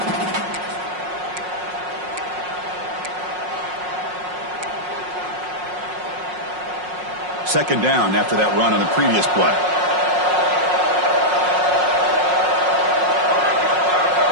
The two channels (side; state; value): left; late; 5.5 ms